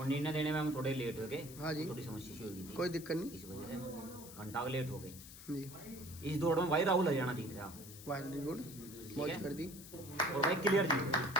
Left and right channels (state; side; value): noise; left; hiss, 15 dB below the sound